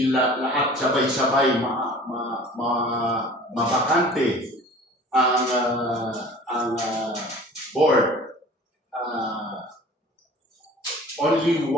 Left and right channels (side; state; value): both; normal; correlation 0.44